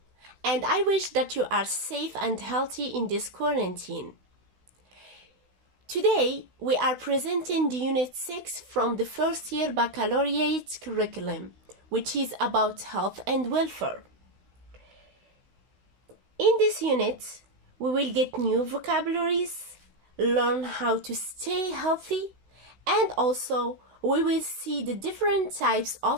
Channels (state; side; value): late; left; 16 ms